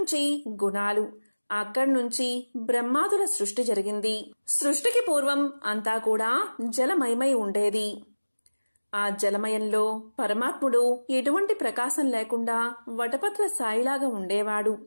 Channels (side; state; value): both; inverted; correlation -1.00